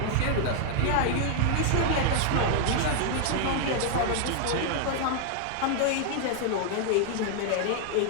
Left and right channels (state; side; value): different; both; correlation 0.00